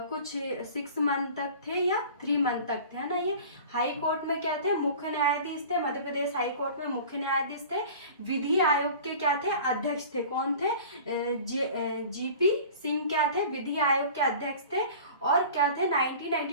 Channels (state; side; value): inverted; both; correlation -0.41